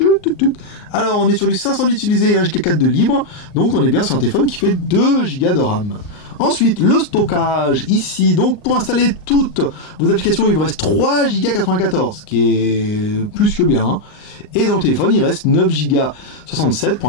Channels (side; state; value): right; late; 38 ms